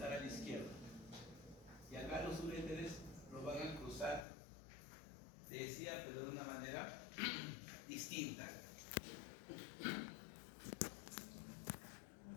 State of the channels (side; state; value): right; drops out; at 4.2 s